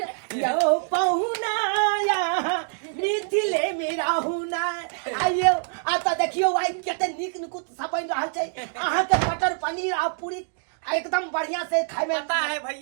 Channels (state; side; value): silent; left; digital silence